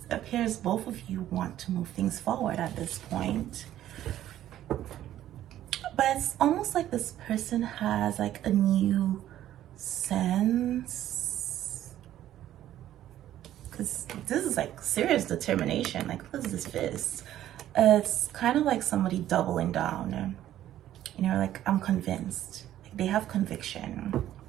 appears both of you want to move things forward at this point. But it's almost like this person has like a new sense, because this is like serious determination. Like, what is this fist? It's kind of like somebody doubling down, you know, like, I'm convinced. Like, they have conviction.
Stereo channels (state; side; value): quieter; left; 12.5 dB